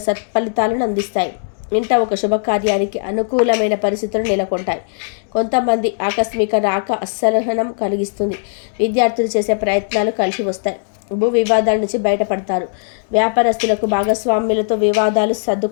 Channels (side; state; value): right; silent; digital silence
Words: సత్ఫలితాలను అందిస్తాయి. ఇంట ఒక శుభకార్యానికి అనుకూలమైన పరిస్థితులు నెలకొంటాయి. కొంతమంది ఆకస్మిక రాక అసహనం కలిగిస్తుంది. విద్యార్థులు చేసే ప్రయత్నాలు కలిసి వస్తాయి. భూ వివాదాల నుంచి బయటపడతారు. వ్యాపారస్తులకు భాగస్వామ్యులతో వివాదాలు